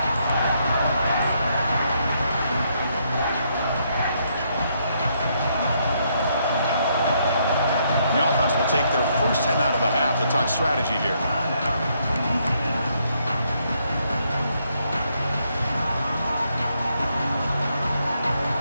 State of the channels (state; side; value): inverted; both; correlation -0.74